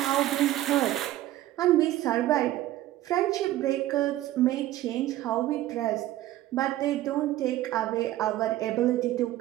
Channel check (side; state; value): left; quieter; 14.6 dB